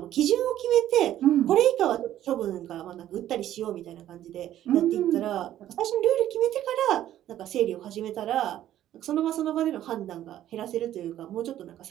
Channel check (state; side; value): quieter; left; 12.3 dB